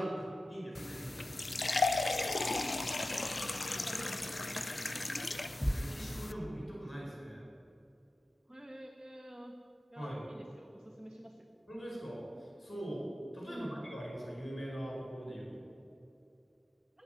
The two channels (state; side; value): normal; both; correlation 0.94